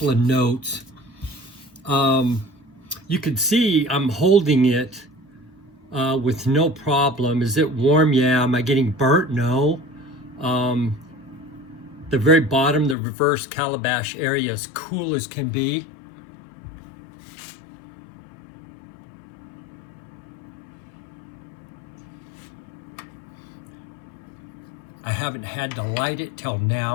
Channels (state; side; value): drops out; right; at 13.0 s